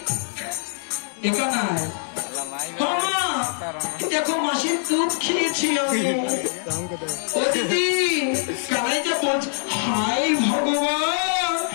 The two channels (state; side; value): silent; right; digital silence